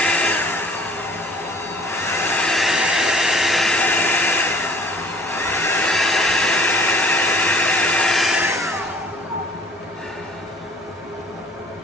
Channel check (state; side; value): normal; both; correlation 0.51